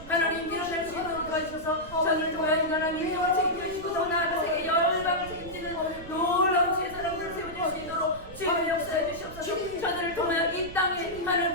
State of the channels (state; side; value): noise; right; rumble, 16 dB below the sound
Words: 하나님 일어날 수 있도록 도와주셔서 저를 통하여 하나님 인정을 책임져 주시고 더 나아가 세계 열방을 책임지는 놀라운 주의 사람들을 세워줄 수 있도록 주의 역사해 주시옵소서. 저들을 통하여 이 땅에 하나님